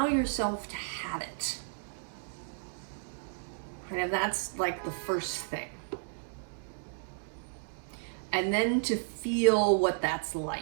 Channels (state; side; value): silent; left; digital silence